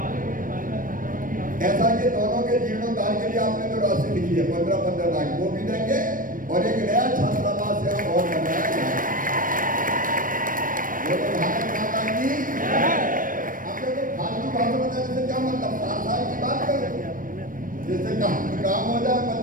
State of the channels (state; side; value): late; left; 0.40 ms